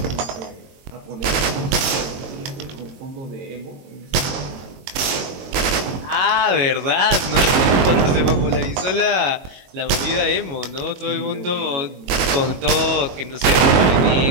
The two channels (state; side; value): late; left; 22 ms